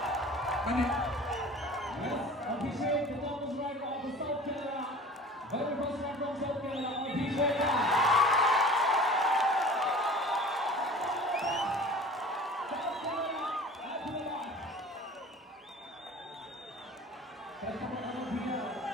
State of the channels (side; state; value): both; normal; correlation 0.42